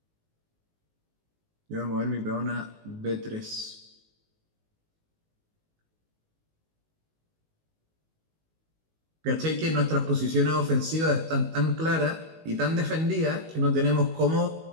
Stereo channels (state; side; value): late; left; 19 ms